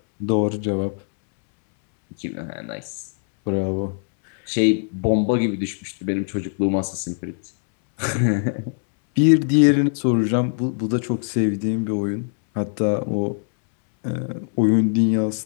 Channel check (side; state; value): right; silent; 64 dB below the other